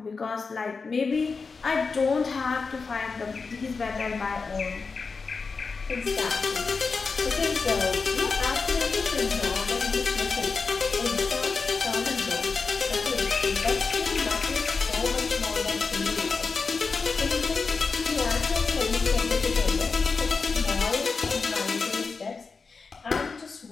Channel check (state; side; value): quieter; right; 4.7 dB